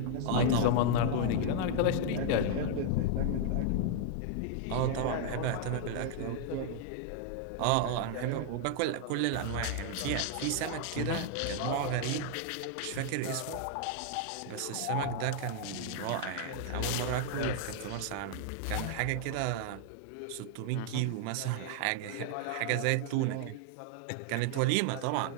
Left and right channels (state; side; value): different; both; correlation 0.00